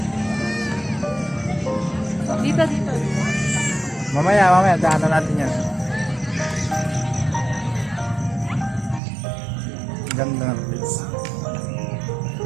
Dito, dito. Mamaya, daanan natin yan. Ganda ng place.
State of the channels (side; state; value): left; drops out; at 9.0 s